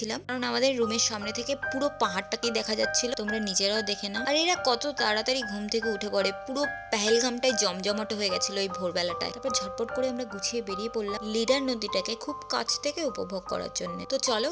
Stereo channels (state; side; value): identical; both; correlation 1.00